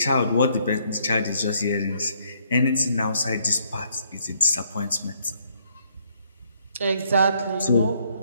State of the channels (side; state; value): both; inverted; correlation -0.69